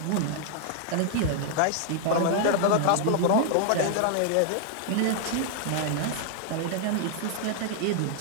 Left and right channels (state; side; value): different; both; correlation -0.01